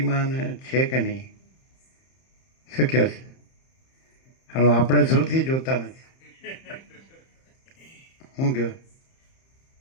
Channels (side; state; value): right; late; 31 ms